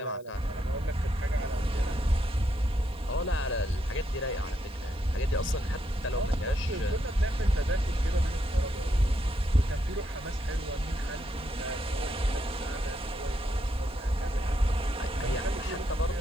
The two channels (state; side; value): noise; left; hiss, 29 dB below the sound